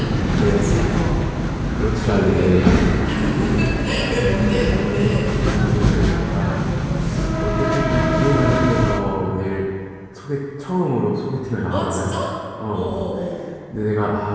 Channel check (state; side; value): identical; both; correlation 1.00